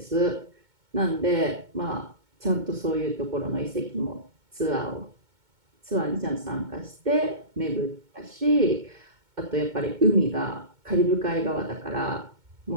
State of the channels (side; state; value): left; late; 2.2 ms